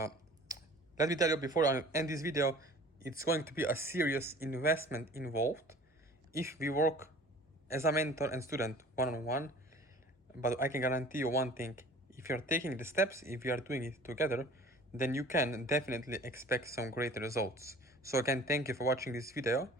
me tell you before I end this video, it's going to be a serious investment involved if we work as a mentor and student one-on-one. But I can guarantee you one thing: if you're taking the steps, if you are doing it together, then you can definitely expect some great results. So again, thank you for watching this video,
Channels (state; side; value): normal; both; correlation 0.46